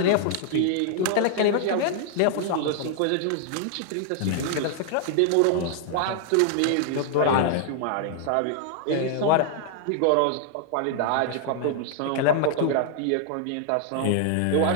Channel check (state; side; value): different; both; correlation 0.00